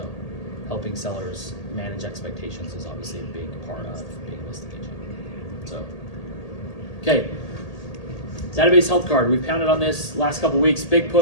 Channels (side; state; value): right; late; 1.8 ms